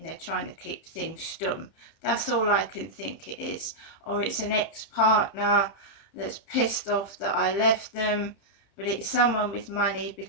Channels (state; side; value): late; right; 30 ms